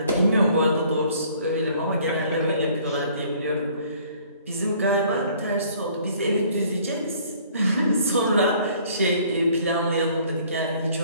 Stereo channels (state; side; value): inverted; both; correlation -0.57